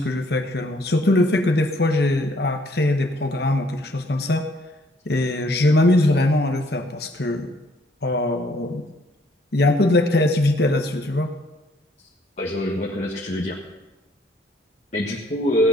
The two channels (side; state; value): both; normal; correlation 0.64